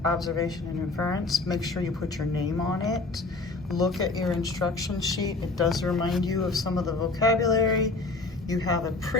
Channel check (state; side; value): quieter; right; 3.5 dB